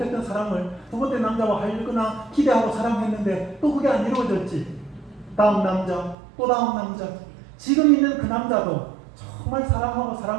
사랑을 두 번째 남자와 하려거나 기대하고 사랑했는데 또 그게 안 이루어졌지. 다음 남자, 또 다음 남자. 지금 있는 그 남자도 정말 사랑하고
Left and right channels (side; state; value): left; drops out; at 6.2 s